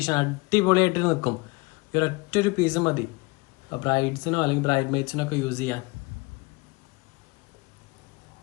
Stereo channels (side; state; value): right; quieter; 25.1 dB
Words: അടിപൊളിയായിട്ട് നിൽക്കും. ഈ ഒരൊറ്റൊരു പീസ് മതി ബ്രൈഡ്സിനോ അല്ലെങ്കിൽ ബ്രൈഡ് മെയ്ഡ്സിനോ ഒക്കെ യൂസ് ചെയ്യാൻ.